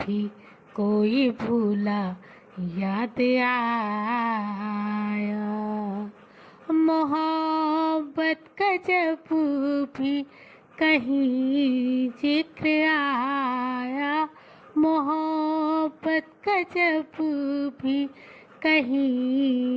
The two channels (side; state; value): both; identical; correlation 1.00